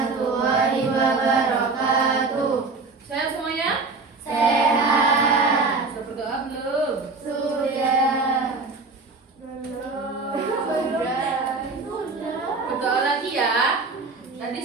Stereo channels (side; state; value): left; quieter; 4.0 dB